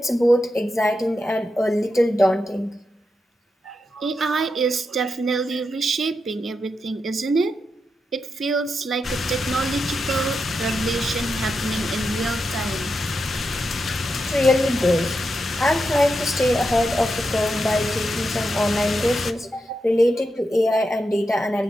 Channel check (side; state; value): both; normal; correlation 0.86